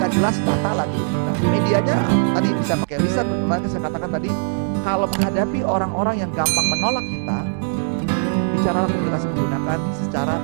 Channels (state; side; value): silent; left; digital silence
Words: jelas, data lagi. Nah, medianya tadi bisa pakai lisan, bagaimana saya katakan tadi, kalau menghadapi orang-orang yang gampang menolak kita, bicaralah komunikasi menggunakan secara